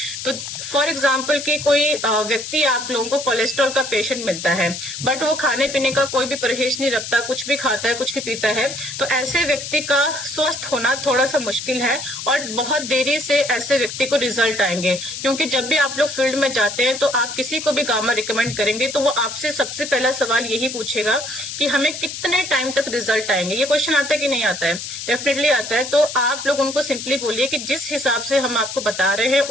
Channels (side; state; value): left; noise; hiss, 8 dB below the sound